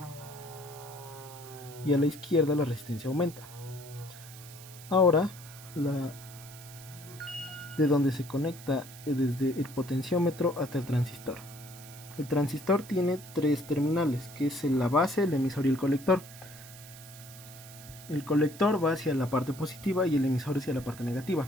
y a la izquierda la resistencia aumenta. Ahora de donde se conecta desde el potenciómetro hasta el transistor. El transistor tiene 3 terminales, que es la base, el emisor y el colector. El colector va hacia la parte positiva y el emisor hacia la parte negativa.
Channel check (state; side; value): noise; right; hiss, 17 dB below the sound